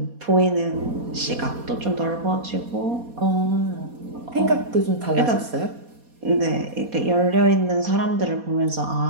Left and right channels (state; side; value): late; left; 4.2 ms